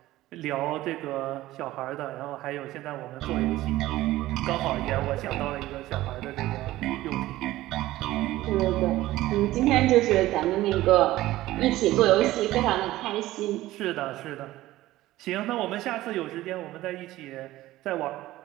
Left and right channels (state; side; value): quieter; left; 16.3 dB